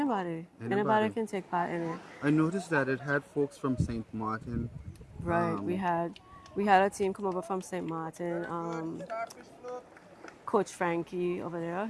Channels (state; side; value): identical; both; correlation 1.00